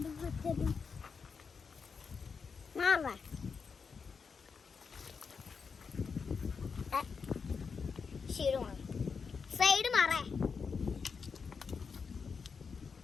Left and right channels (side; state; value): right; quieter; 5.5 dB